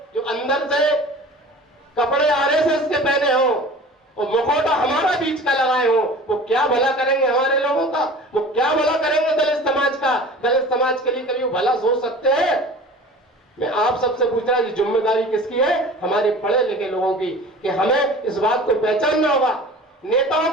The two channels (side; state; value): both; normal; correlation 0.41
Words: जो अंदर से कपड़े आरएसएस के पहने हो, वो मुखौटा हमारा बीच का लगाए हो, वो क्या भला करेंगे हमारे लोगों का? वो क्या भला करेंगे दलित समाज का? दलित समाज के लिए कभी वो भला सोच सकते हैं? मैं आप सबसे पूछ रहा हूं, जिम्मेदारी किसकी है? हमारे पढ़े लिखे लोगों की, कि हमें इस बात को पहचानना होगा। नेताओं